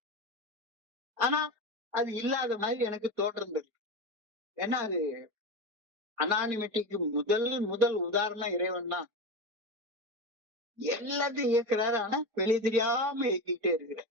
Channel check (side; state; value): left; late; 4.9 ms